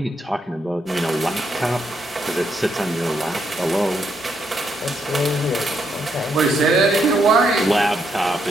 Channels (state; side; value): normal; both; correlation 0.77